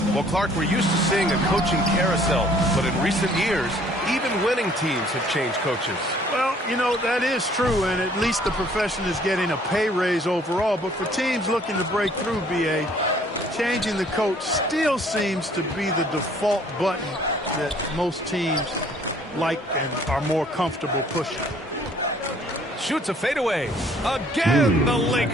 Well, Clark, we're used to seeing a coaching carousel, but in recent years, even winning teams have changed coaches. Well, you know, that is true, and at least the profession is getting a pay raise overall. But for teams looking to break through, BA, changing the coach still seems to be the default button that most teams like and are more comfortable pushing. Shoots a fadeaway. Again, the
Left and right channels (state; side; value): normal; both; correlation 0.59